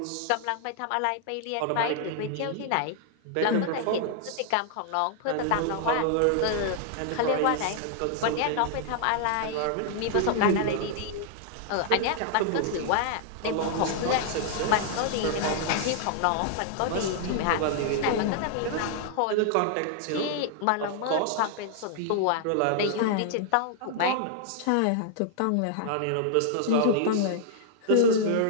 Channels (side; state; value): both; different; correlation -0.01